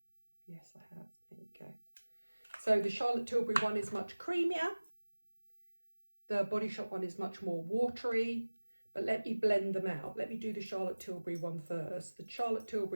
Yes, I have. There you go. So the Charlotte Tilbury one is much creamier. The Body Shop one is much more watery. But let me blend them out. Let me do the Charlotte Tilbury one first. The Charlotte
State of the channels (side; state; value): both; inverted; correlation -1.00